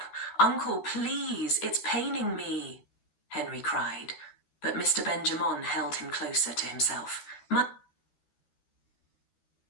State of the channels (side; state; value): right; late; 12 ms